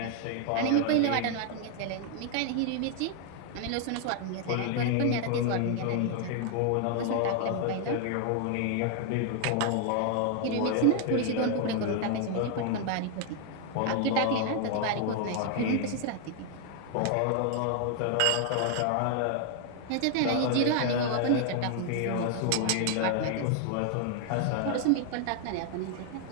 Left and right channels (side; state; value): both; different; correlation 0.00